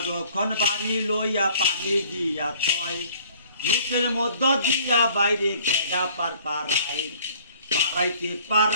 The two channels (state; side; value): inverted; both; correlation -0.55